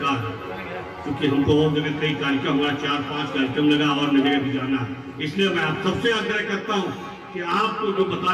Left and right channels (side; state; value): both; identical; correlation 1.00